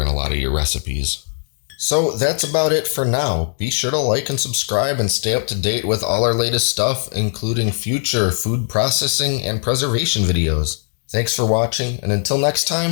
in a lot of your recipes. So that's about it for now. Be sure to like and subscribe and stay up to date with all our latest stuff, including future food processing and preservation videos. Thanks for watching, and until next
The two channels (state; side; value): silent; right; digital silence